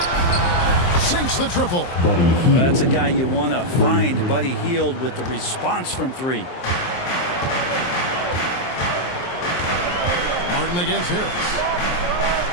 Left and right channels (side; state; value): right; late; 23 ms